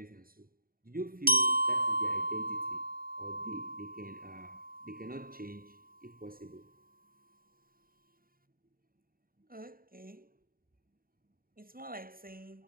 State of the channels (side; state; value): left; late; 0.42 ms